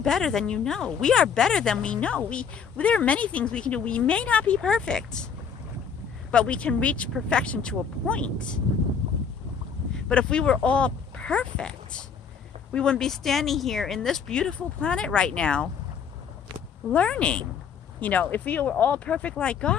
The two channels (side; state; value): right; quieter; 6.7 dB